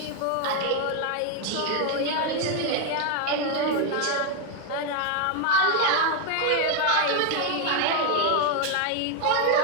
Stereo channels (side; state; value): both; different; correlation 0.01